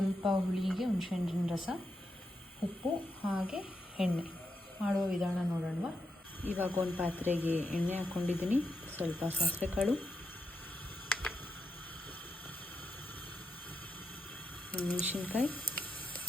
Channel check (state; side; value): normal; both; correlation 0.84